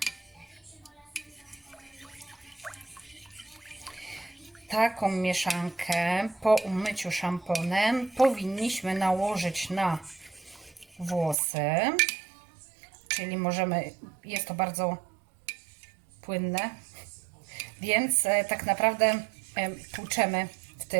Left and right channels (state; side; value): drops out; left; at 11.4 s